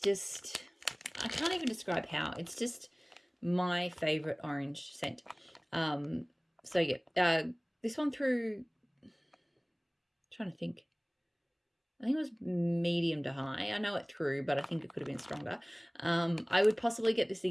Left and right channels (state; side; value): identical; both; correlation 1.00